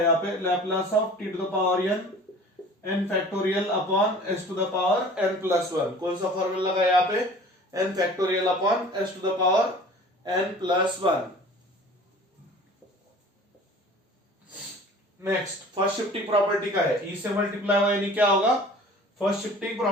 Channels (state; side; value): normal; both; correlation 0.45